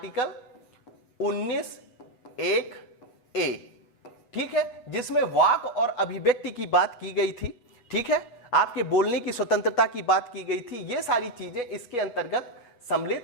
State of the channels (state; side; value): late; right; 8.2 ms